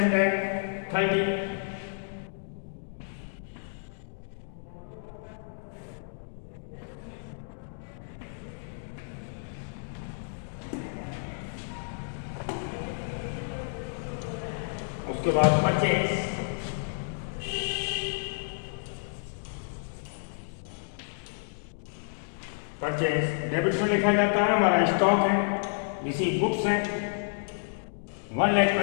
उसके बाद परचेज डेबिट में लिखा जाता है, हमारा स्टॉक है, रिसीव गुड्स है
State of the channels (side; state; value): right; silent; digital silence